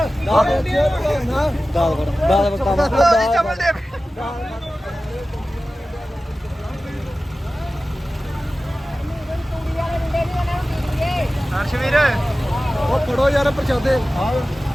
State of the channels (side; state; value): both; normal; correlation 0.96